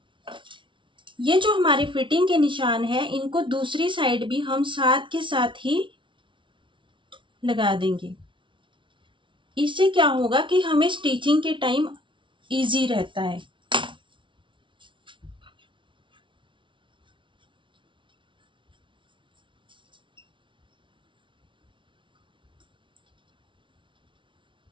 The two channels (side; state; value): left; late; 0.24 ms